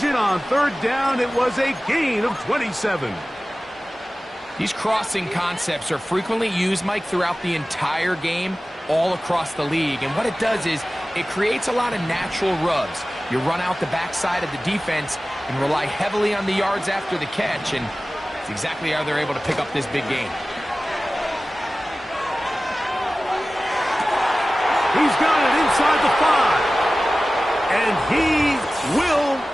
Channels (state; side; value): normal; both; correlation 0.97